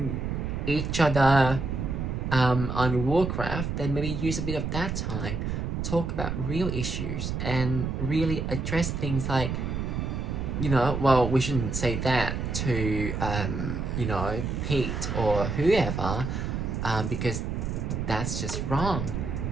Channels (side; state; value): right; noise; rumble, 2 dB below the sound